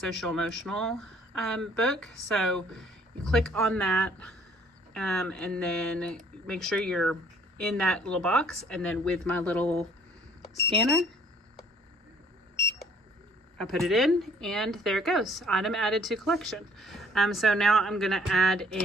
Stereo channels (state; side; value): normal; both; correlation 0.59